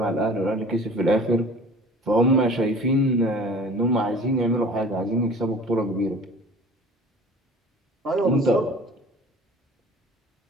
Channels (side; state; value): both; normal; correlation 0.44